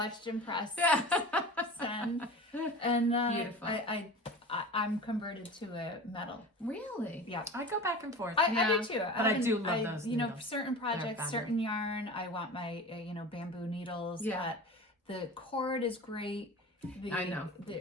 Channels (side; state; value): both; normal; correlation 0.35